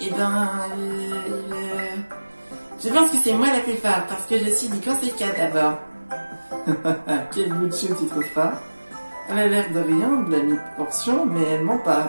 Eh ben... Je pense que c'est moi la plus forte, parce que je suis du Conseil 4 d'abord. Quel bout de chou tu trouves pas? Elle a l'air de rien, de la mi-portion, mais elle ment pas.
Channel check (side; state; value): both; inverted; correlation -1.00